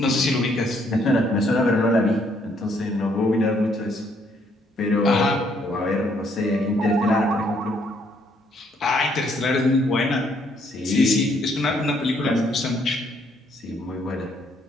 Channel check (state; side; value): normal; both; correlation 0.69